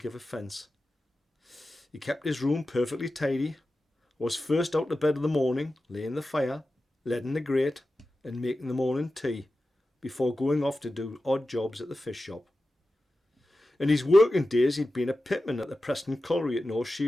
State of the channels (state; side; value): normal; both; correlation 0.93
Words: offence. He kept his room perfectly tidy, was first out to bed in the morning, laying the fire, leading the grate, and making the morning tea, before going off to do odd jobs at the fish shop. In his working days he'd been a pitman at the Preston Colliery at North